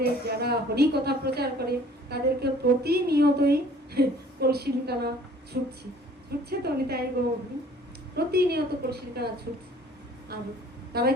যারা হরি কথা প্রচার করে তাদেরকে প্রতিনিয়তই কলসির কানা ছুটছে তো নিতাই গৌর, প্রতিনিয়ত কলসির কানা ছুটছে। আর তারা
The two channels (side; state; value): both; normal; correlation 0.53